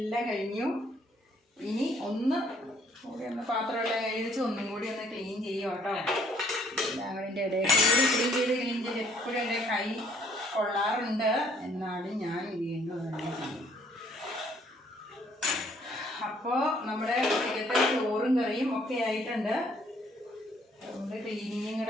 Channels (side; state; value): both; normal; correlation 0.63